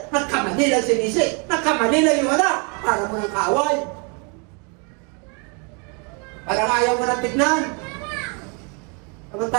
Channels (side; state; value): left; quieter; 35.1 dB